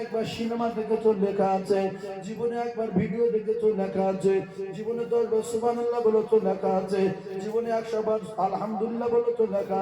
একবার সিনেমা দেখেছো লেখা আছে, জীবনে একবার ভিডিও দেখেছো লেখা আছে, জীবনে 10 বার সুবহানাল্লাহ বলেছো লেখা আছে, জীবনে 100 বার আলহামদুলিল্লাহ বলেছো লেখা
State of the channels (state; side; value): identical; both; correlation 1.00